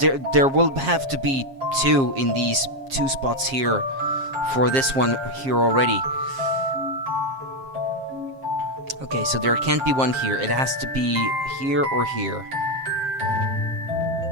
there will have to be 2 in these 2 spots here for this one here already. Okay, so there can't be one here. It has to be here or here.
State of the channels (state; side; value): late; left; 7.5 ms